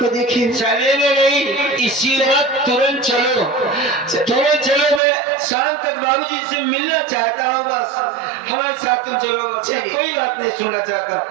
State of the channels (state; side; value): drops out; left; at 5.0 s